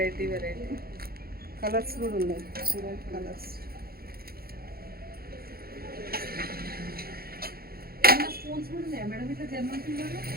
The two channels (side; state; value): left; late; 0.44 ms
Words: కలర్స్ కూడా ఉన్నాయి, చూడండి కలర్స్. స్పూన్స్ కూడా ఉన్నాయా మేడం? ఇట్లా జర్మన్ సిల్వర్లో